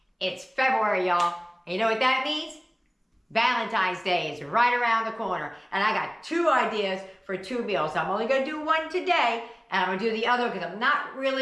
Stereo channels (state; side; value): identical; both; correlation 1.00